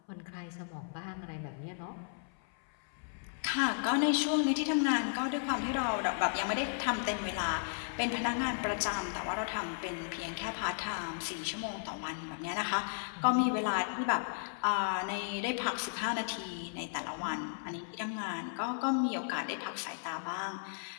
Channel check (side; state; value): right; silent; 55 dB below the other